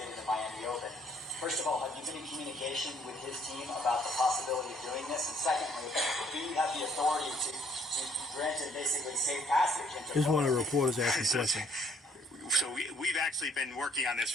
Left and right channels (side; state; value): both; normal; correlation 0.63